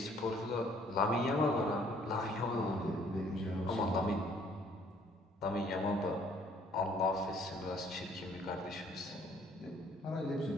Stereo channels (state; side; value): normal; both; correlation 0.61